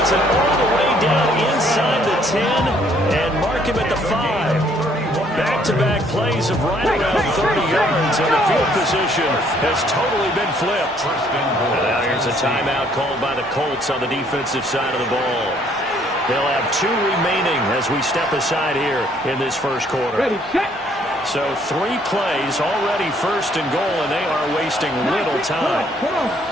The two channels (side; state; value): both; normal; correlation 0.64